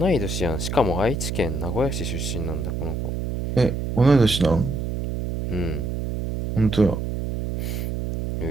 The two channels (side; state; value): right; noise; hum, 3 dB below the sound